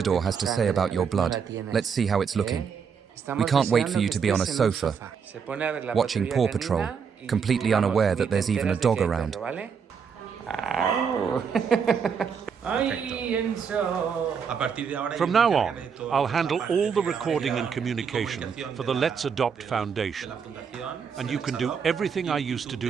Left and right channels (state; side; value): quieter; left; 6.5 dB